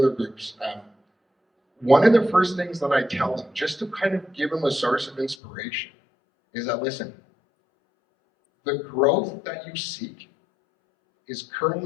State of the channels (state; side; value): drops out; right; at 5.4 s